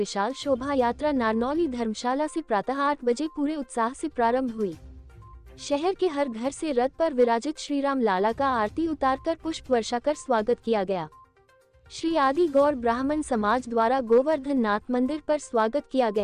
शोभा यात्रा नारनौली धर्मशाला से प्रातः 8 बजे पूरे उत्साह से प्रारंभ हुई। शहर के हर घर से रथ पर विराजित श्री राम लाला का आरती उतारकर पुष्प वर्षा कर स्वागत किया गया। श्री आदि गौर ब्राह्मण समाज द्वारा गोवर्धन नाथ मंदिर पर स्वागत किया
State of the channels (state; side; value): identical; both; correlation 1.00